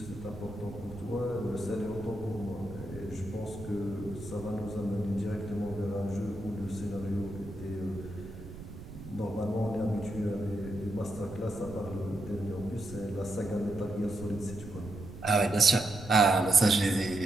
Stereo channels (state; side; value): noise; right; rumble, 13 dB below the sound